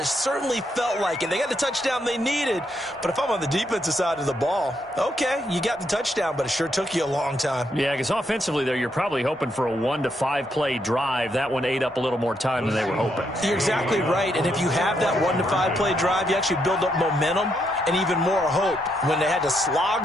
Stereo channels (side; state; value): both; normal; correlation 0.77